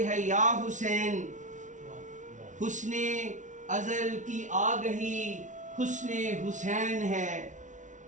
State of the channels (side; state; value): left; late; 0.37 ms